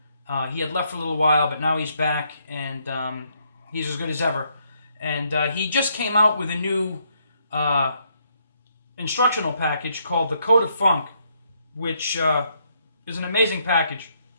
He had left for a little while, but now he's back, and he's as good as ever. And he just came out with a new instructional package called the Code of Funk, which is an amazing package.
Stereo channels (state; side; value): inverted; both; correlation -0.73